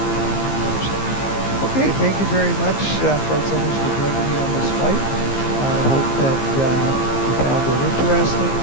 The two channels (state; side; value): late; right; 15 ms